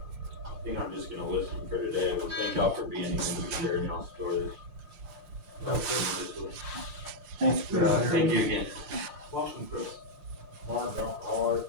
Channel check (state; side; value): late; left; 5.7 ms